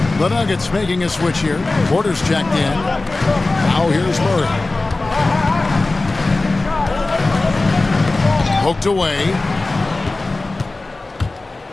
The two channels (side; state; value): right; quieter; 3.2 dB